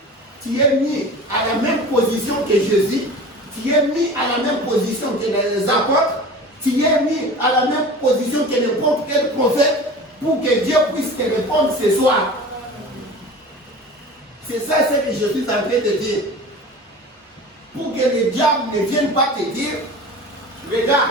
tu es mis à la même position que Jésus, tu es mis à la même position que les apôtres, tu es mis à la même position que n'importe quel prophète pour que Dieu puisse te répondre ce soir. C'est ça ce que je suis en train de dire. Pour que le diable ne vienne pas te dire, regarde,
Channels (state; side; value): normal; both; correlation 0.37